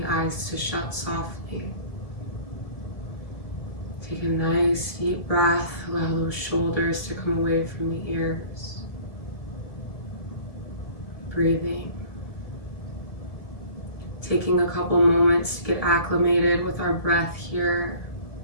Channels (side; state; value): right; late; 2.0 ms